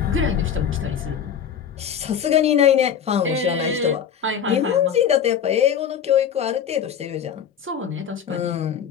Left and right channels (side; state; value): right; quieter; 8.1 dB